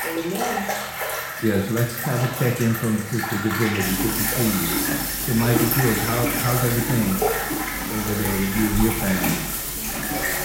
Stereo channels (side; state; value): both; identical; correlation 1.00